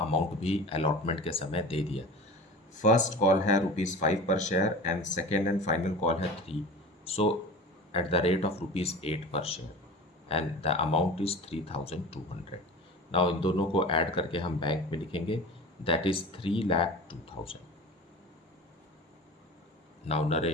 भी अलॉटमेंट के समय दे दिया। फर्स्ट कॉल है ₹5 पर share and second and final call है 3, सो एट द रेट ऑफ ₹8 पर share and the amount is 3,200। Now in दोनों को ऐड करके हम बैंक में लिखेंगे, that is 3,02,000। Now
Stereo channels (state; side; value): normal; both; correlation 0.35